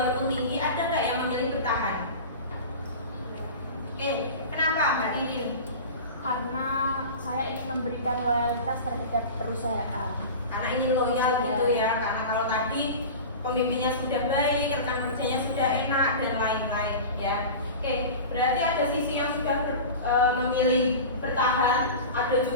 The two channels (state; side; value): inverted; both; correlation -0.31